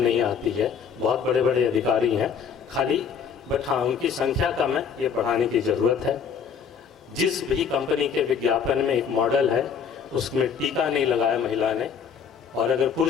आती है। बहुत बड़े बड़े अधिकारी हैं, खाली बट हाँ उनकी संख्या कम है, ये बढ़ाने की ज़रूरत है। जिस भी कंपनी के विज्ञापन में एक मॉडल है उसमें टीका नहीं लगाया महिला ने, और अगर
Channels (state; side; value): quieter; right; 6.8 dB